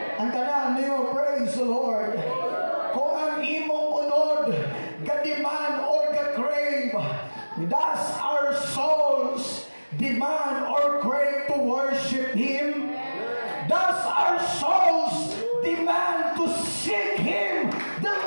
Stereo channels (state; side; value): inverted; both; correlation -1.00